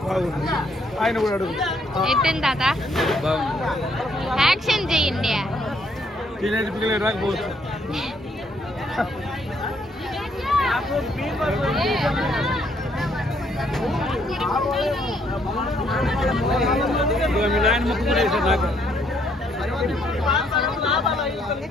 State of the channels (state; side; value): normal; both; correlation 0.69